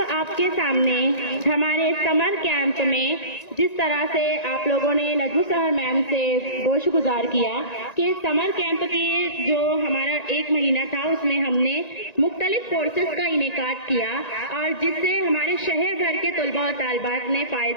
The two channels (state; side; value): late; right; 1.9 ms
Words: आपके सामने हमारे समर कैंप में जिस तरह से आप लोगों ने नजमू सहर मैम से गोशगुजार किया कि समर कैंप के जो हमारा 1 महीना था उसमें हमने मुख्तलिफ कोर्सेज का इनेकाद किया और जिससे हमारे शहर भर के तलबा और तालिबात ने